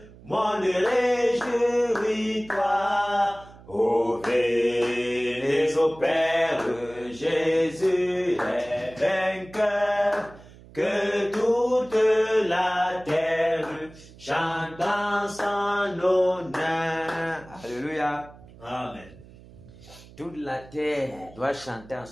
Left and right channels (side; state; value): right; noise; hum, 21 dB below the sound